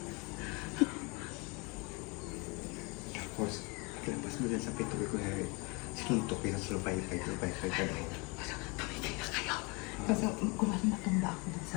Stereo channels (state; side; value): quieter; right; 29.0 dB